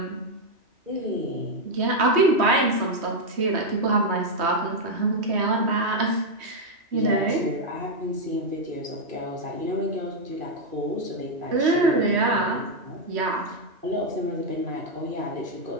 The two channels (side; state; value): left; late; 3.1 ms